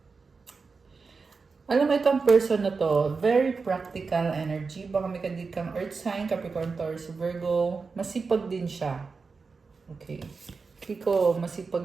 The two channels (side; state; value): left; quieter; 4.6 dB